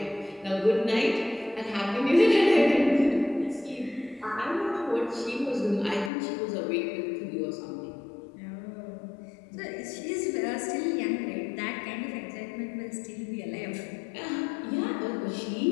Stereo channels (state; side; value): drops out; right; at 6.1 s